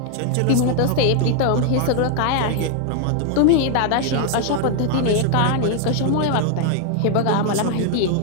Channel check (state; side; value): different; both; correlation 0.00